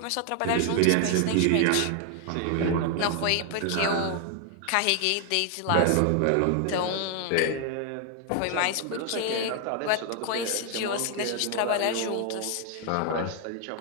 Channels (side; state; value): both; different; correlation 0.00